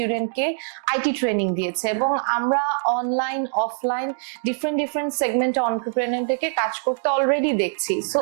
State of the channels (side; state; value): left; silent; digital silence